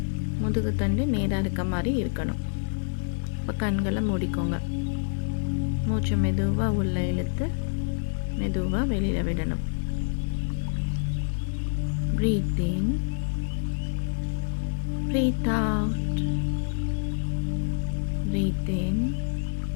முதுகு தண்டு நேராக இருக்க மாதிரி இருக்கணும். இப்போ கண்களை மூடிக்கோங்க. மூச்சை மெதுவாக உள்ளே இழுத்து மெதுவாக வெளியில் விடணும். Breathe in, breathe out. Breathe in,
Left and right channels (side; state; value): right; silent; digital silence